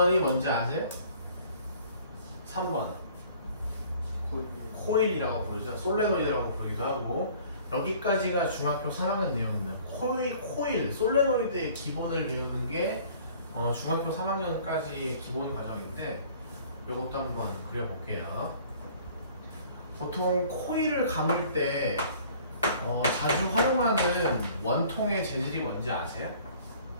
뭔지 아세요? 3번 코일이라고 부르죠. 솔레노이드라고 부르기도 하고 여기까지가 중학교 3학년 내용입니다. 코일, 솔레노이드의 기본을 배우는 게 중학교 3학년까지의 기본 과정인데 이것도 한번 그려볼게요. 보통 코일을 감을 때 자주 활용하는 원통의 재질이 뭔지 아세요?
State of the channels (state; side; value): inverted; both; correlation -0.52